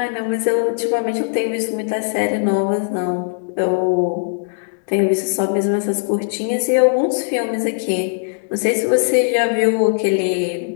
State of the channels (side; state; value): right; silent; 66 dB below the other